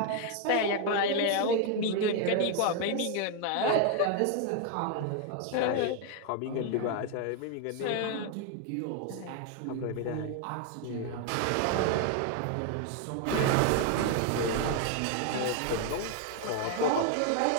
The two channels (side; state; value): both; different; correlation 0.01